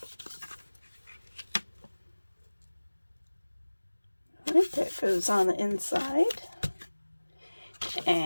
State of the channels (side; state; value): both; inverted; correlation -1.00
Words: Alright, that goes on the inside.